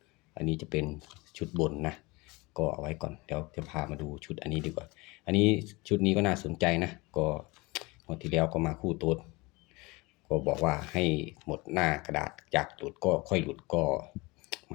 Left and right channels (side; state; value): right; quieter; 24.2 dB